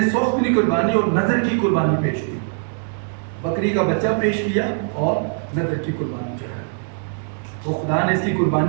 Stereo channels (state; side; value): silent; left; 59 dB below the other